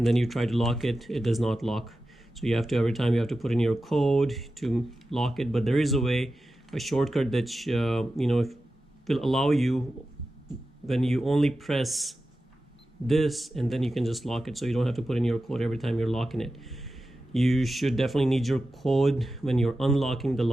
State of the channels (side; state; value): both; normal; correlation 0.93